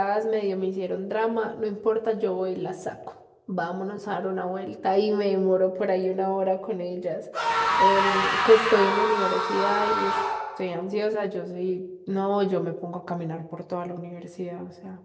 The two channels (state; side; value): identical; both; correlation 1.00